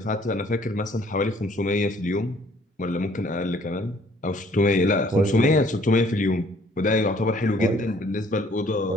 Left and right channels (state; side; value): normal; both; correlation 0.60